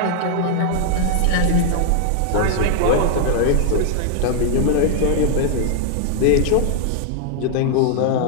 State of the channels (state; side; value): different; both; correlation -0.01